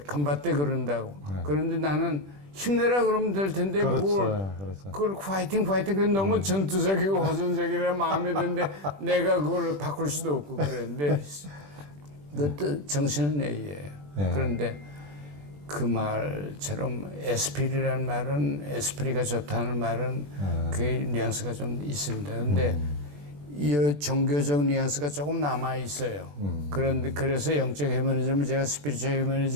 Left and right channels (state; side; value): late; left; 21 ms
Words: 간바떼 그런다고. 그런데 나는 힘내라 그러면 될 텐데 그걸 파이팅 그래 너무 전투적이고 호전적이라 마음에 드는데 내가 그걸 바꿀 수도 없고 그랬는데 그것도 정신은 내예요. 그런데 그 말처럼 에스피리라는 말은 에스프리가 좋다는 말은 그 뉘앙스가 좀 있습니다. 그런데 이 종교적 뉘앙스가 조금 남아 있어요. 그런데 그래서 영적 휴머니즘을 제가 스피리추얼